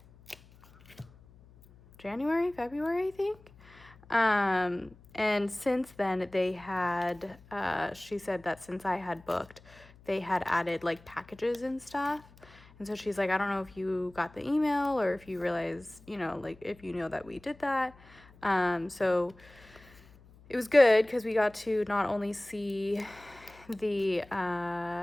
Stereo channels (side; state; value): left; noise; hum, 24 dB below the sound